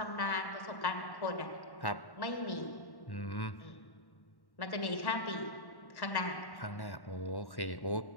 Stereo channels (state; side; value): late; right; 1.1 ms